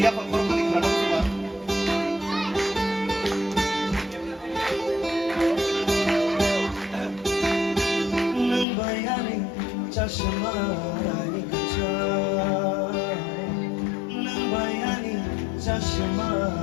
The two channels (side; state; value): right; drops out; at 8.7 s